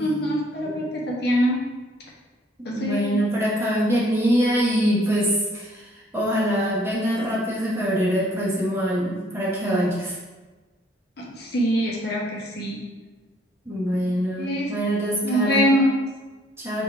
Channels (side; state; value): both; normal; correlation 0.62